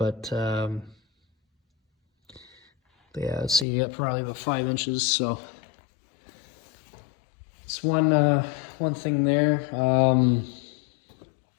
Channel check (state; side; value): drops out; right; at 3.7 s